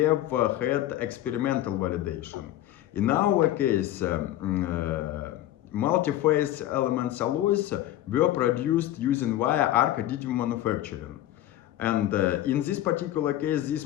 had experimental validation. In our case, multi-phase elements alloys were produced using via arc additive manufacturing. And in this particular case,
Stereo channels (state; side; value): quieter; right; 13.6 dB